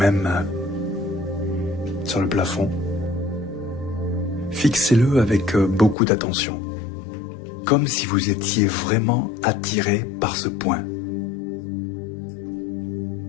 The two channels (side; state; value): right; drops out; at 6.0 s